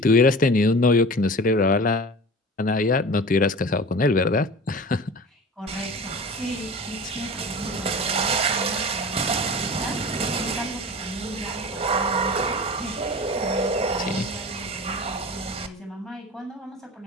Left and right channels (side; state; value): both; normal; correlation 0.36